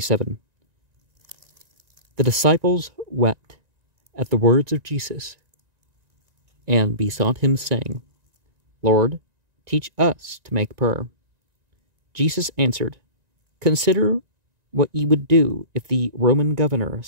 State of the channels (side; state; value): left; late; 1.9 ms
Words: The disciples wept at the words of Jesus and besought him, saying, Lord, teach us to make prayer. Jesus answered, Consider what ye would do if the Roman governor